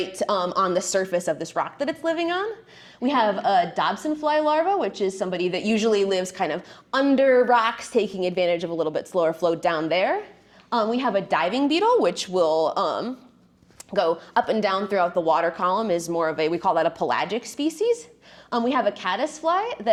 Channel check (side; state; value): both; identical; correlation 1.00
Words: on the surface of this rock that it's living on. We have a Dobson fly larva, which is somebody that usually lives kind of under rocks, taking advantage of a little bit slower flow down there. We have a diving beetle, which will go up and down throughout the water column, is more of we call that a pelagic species. We have a caddisfly